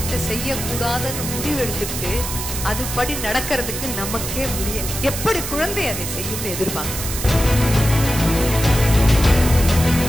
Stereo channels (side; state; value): right; noise; hiss, 5 dB below the sound